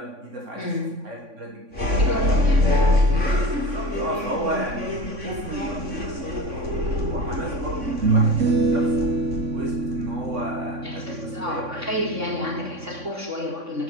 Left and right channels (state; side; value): late; left; 3.6 ms